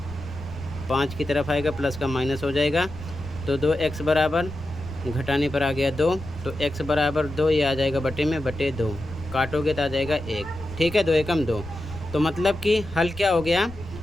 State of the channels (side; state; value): left; noise; rumble, 16 dB below the sound